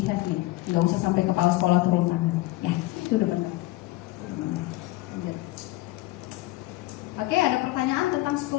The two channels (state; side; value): quieter; right; 18.6 dB